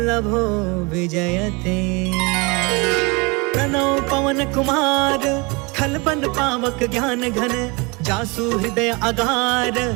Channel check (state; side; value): quieter; left; 27.8 dB